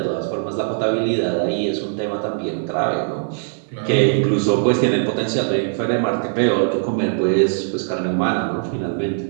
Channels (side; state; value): left; silent; 58 dB below the other